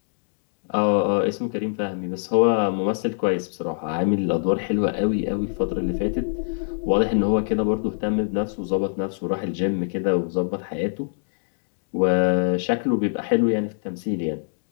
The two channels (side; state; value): right; silent; digital silence